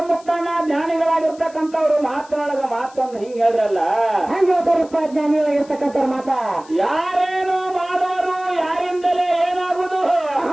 ಮುಕ್ತಾನ ಜ್ಞಾನಿಗಳಾಗಿರ್ತಕ್ಕಂಥವ್ರು ಮಾತನಾಡಗ ಮಾತೊಂದು ಹಿಂಗ್ ಹೇಳ್ರಲ್ಲ. ಹೆಂಗ್ ಹೇಳ್ತಾರಪ್ಪ ಜ್ಞಾನಿಗಳಾಗಿರ್ತಕ್ಕಂಥವ್ರ ಮಾತ? ಯಾರೇನು ಮಾಡೋರು ಯಾರಿಂದಲೇ ಏನಾಗುದು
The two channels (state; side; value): noise; left; hiss, 25 dB below the sound